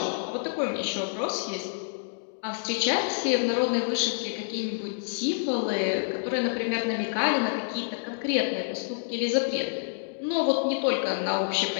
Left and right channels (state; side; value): silent; right; digital silence